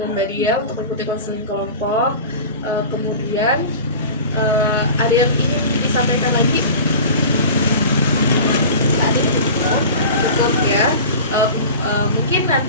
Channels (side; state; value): both; inverted; correlation -0.36